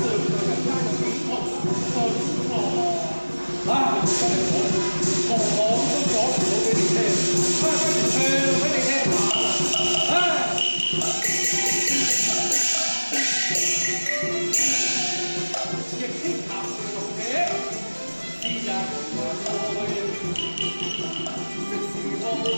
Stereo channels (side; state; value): both; inverted; correlation -1.00